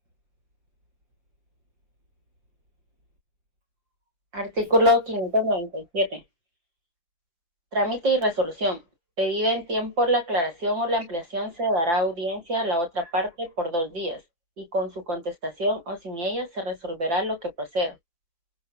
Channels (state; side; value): late; left; 6.0 ms